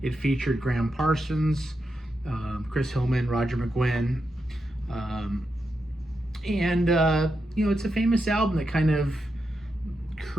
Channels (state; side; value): normal; both; correlation 0.86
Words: It featured Graham Parsons, Chris Hillman, Roger McGuinn. It's a famous album that kind of